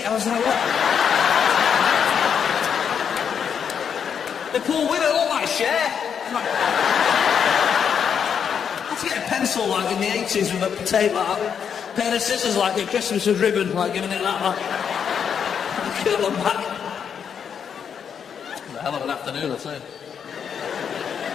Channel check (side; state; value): right; quieter; 7.5 dB